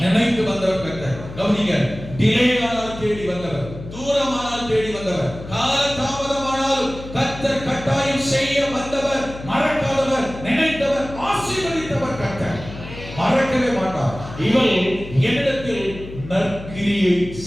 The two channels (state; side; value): noise; left; hum, 13 dB below the sound